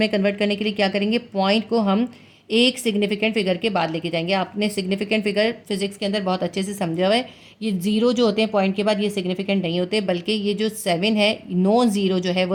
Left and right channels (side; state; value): both; identical; correlation 1.00